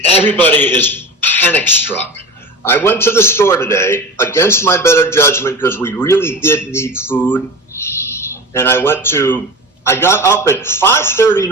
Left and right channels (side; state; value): both; normal; correlation 0.31